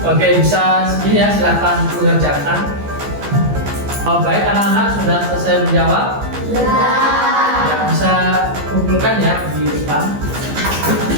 Oke, bisa ini ya, silakan mengerjakan. Baik, anak-anak sudah selesai menjawab? Sudah. Ya, bisa kumpulkan ya di depan.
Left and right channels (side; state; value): left; late; 15 ms